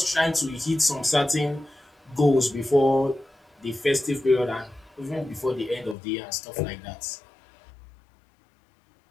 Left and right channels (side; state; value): right; drops out; at 6.0 s